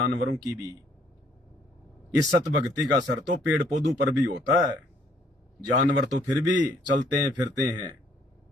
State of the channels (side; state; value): both; normal; correlation 0.64